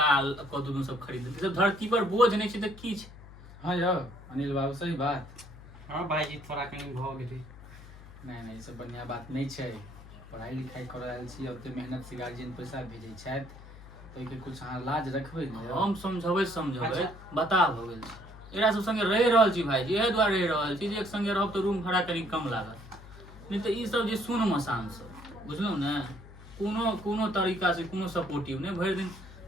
कदू सब खरीद सब धरती पर बोझ नहीं छै तऽ की छै हाँ यौ अनिल बाबू सही बात हाँ भाई जी थोड़ा कनी भ गेलै नहीं ई सब बढ़िया बात नहीं छै पढ़ाई लिखाई कर रहल छी ओते मेहनत से गार्जियन पैसा भेजै छथि तो के कुछ अहाँ लाज रखबै ने हम समझबै बता भ गेल एकरा सब संगे रहि रहल छी भाईजी एहे दुआरे रहि रहल छी जे एक संगे रहब तऽ रूम भाड़ा कनी कम लागत नहीं तऽ ई सब जे सुन मसान सब बुझलहुँ ने कोनो तरीका से कोनो सपोर्टिव नहीं भरि दिन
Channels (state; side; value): noise; left; hum, 17 dB below the sound